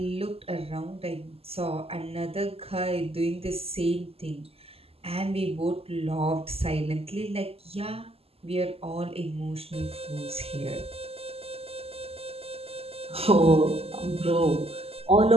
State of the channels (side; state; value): left; late; 0.29 ms